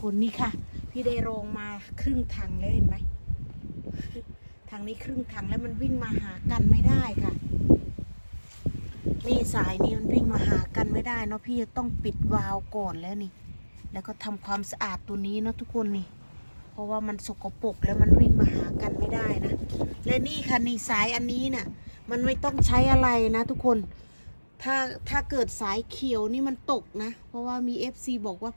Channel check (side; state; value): both; inverted; correlation -1.00